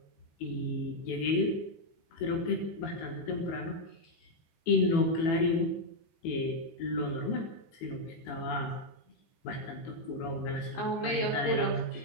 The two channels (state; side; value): late; right; 18 ms